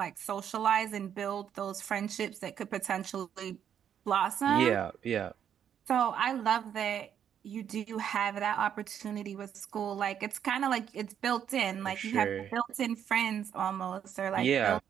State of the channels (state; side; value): quieter; left; 9.0 dB